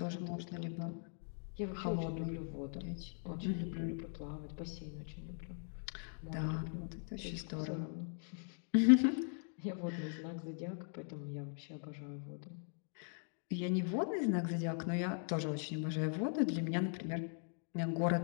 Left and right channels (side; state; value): right; silent; 51 dB below the other